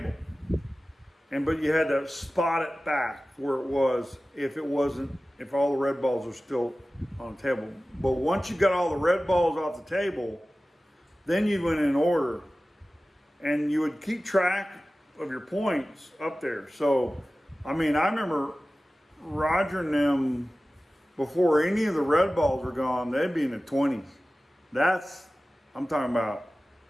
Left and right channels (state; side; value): normal; both; correlation 0.96